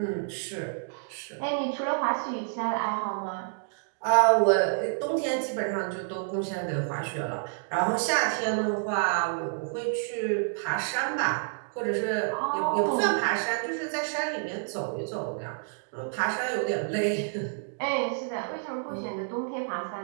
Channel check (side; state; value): left; silent; digital silence